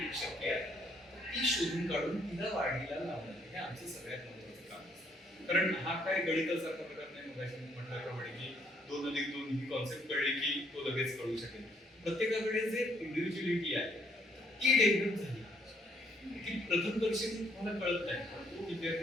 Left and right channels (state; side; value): normal; both; correlation 0.68